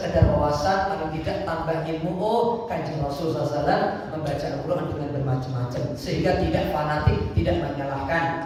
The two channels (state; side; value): identical; both; correlation 1.00